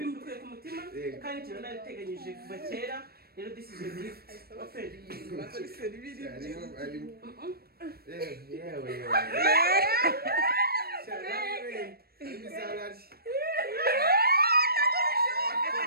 bikuye ku mutima kandi ikintu nabiteganyije kuva kera. Rero this is your gift. Open. Yewe.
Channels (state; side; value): late; left; 0.45 ms